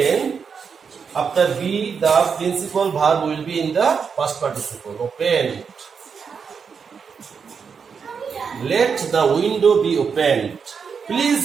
after be, the principal verb will be in the past participle. Opened. Let the window be opened. Please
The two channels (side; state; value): left; quieter; 6.1 dB